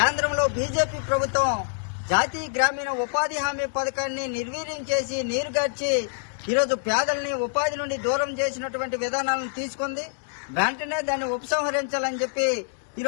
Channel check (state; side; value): silent; right; 61 dB below the other